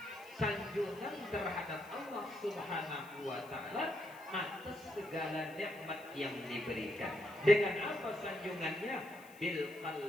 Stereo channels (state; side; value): noise; left; hiss, 23 dB below the sound